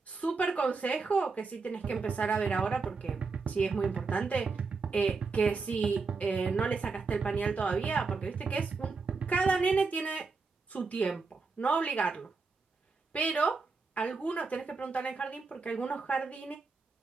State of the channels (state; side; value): quieter; left; 4.4 dB